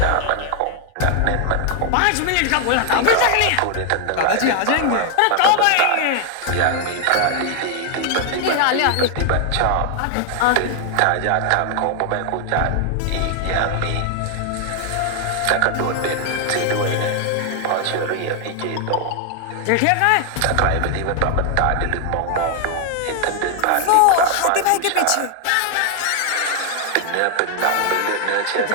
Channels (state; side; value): different; both; correlation 0.00